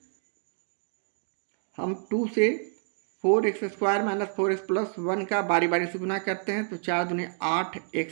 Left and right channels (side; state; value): left; silent; digital silence